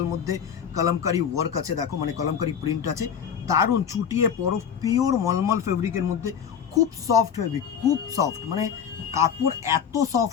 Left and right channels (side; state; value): right; quieter; 7.9 dB